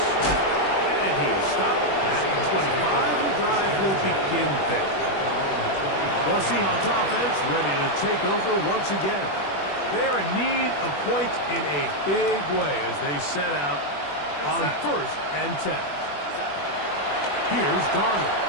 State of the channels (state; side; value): late; right; 21 ms